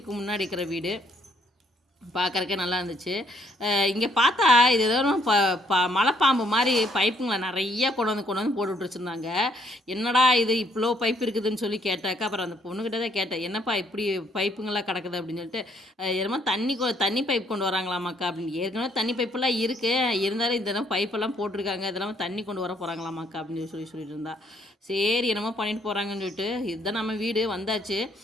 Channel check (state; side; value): normal; both; correlation 0.67